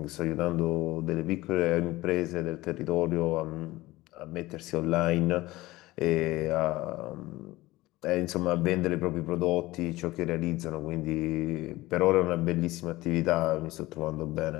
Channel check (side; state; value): right; quieter; 18.7 dB